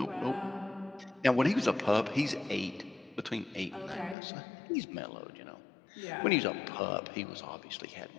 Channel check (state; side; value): drops out; right; at 4.2 s